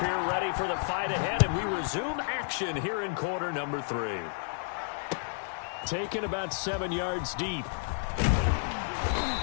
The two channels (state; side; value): silent; right; digital silence